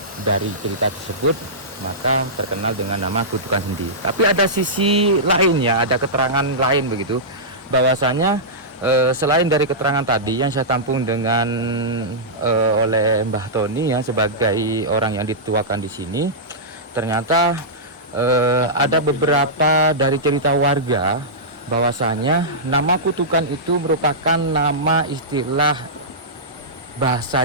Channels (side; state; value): both; normal; correlation -0.15